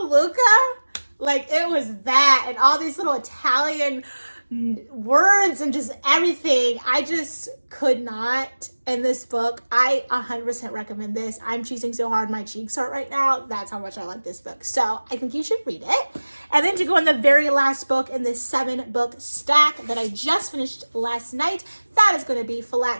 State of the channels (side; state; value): both; inverted; correlation -1.00